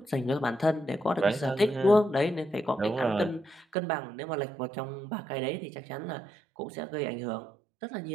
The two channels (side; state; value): left; drops out; at 3.8 s